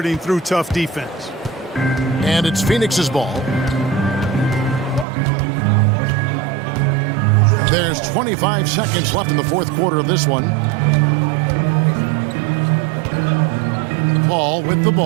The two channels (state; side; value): drops out; left; at 5.1 s